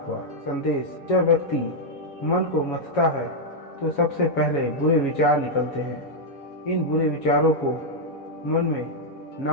हुआ। संदेश: जब व्यक्ति मन को मथता है तो सबसे पहले बुरे विचार निकलते हैं। इन बुरे विचारों को मन में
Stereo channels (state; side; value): late; right; 7.2 ms